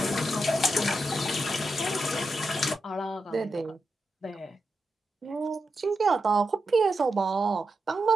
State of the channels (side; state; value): both; normal; correlation 0.87